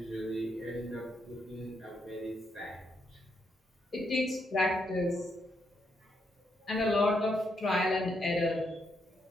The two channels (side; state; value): both; normal; correlation 0.78